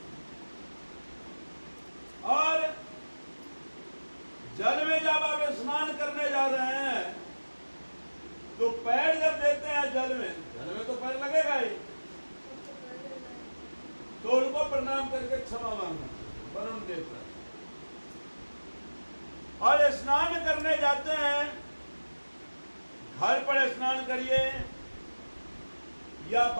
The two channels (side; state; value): both; inverted; correlation -1.00